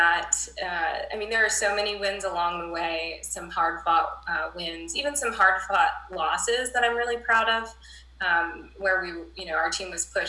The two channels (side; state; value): both; identical; correlation 1.00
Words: there are so many wins along the way. Some hard-fought wins, even some hard-fought losses that I'm really proud of. where our team was